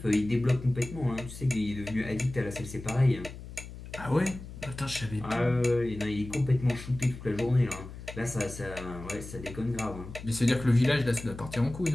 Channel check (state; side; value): noise; left; hum, 13 dB below the sound